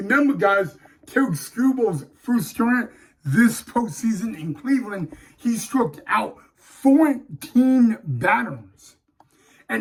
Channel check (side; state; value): both; identical; correlation 1.00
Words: guys, Tarik Skubal's first start this postseason in Cleveland, he struck out 14 batters.